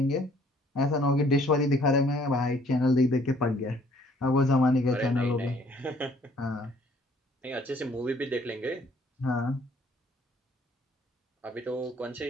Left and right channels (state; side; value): normal; both; correlation 0.60